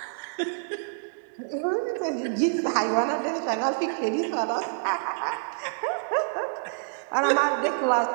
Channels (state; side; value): silent; left; digital silence